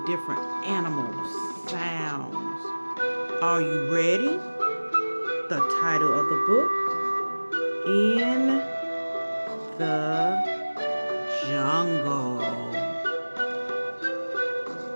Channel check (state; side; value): inverted; both; correlation -1.00